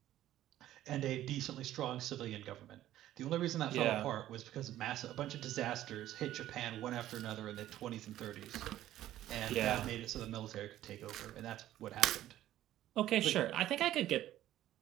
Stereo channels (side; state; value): left; quieter; 13.4 dB